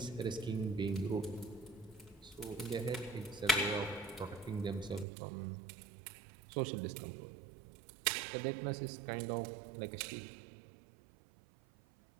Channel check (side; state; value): left; drops out; at 5.1 s